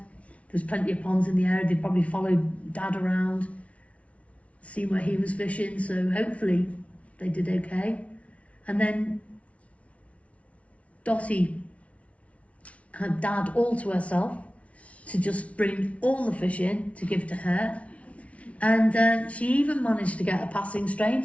There's plenty of ponds in the area. They probably followed Dad around, see where he was fishing. So hopefully they did okay. And then Dottie had Dad all to herself to just bring all the fish in to give to her. And she even managed to get a passing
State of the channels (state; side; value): late; right; 0.064 ms